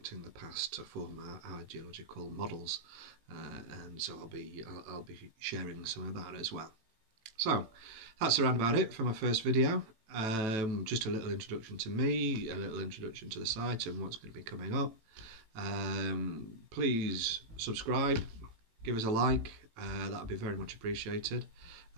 the past to form our geological models, and so I'll be sharing some of that as well. So that's around about it for my first video. Just a little introduction to me, a little introduction to the site and what's going to be coming up. Please subscribe, give us a like, that would be very much appreciated.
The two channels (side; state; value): left; late; 18 ms